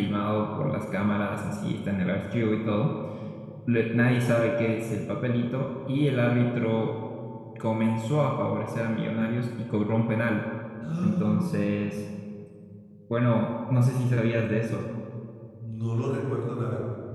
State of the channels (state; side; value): identical; both; correlation 1.00